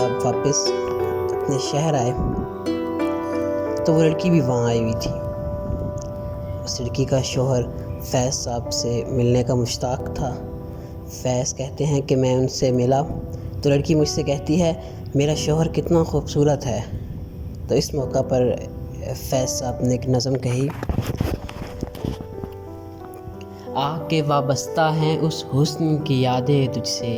واپس اپنے شہر آئے تو وہ لڑکی بھی وہاں آئی ہوئی تھی۔ اس لڑکی کا شوہر فیض صاحب سے ملنے کا مشتاق تھا۔ فیض کہتے ہیں کہ میں ان سے ملا تو لڑکی مجھ سے کہتی ہے میرا شوہر کتنا خوبصورت ہے۔ تو اس موقع پر فیض صاحب نے ایک نظم کہی، آ کے وابستہ ہیں اس حسن کی یادیں تجھ سے،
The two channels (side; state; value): both; identical; correlation 1.00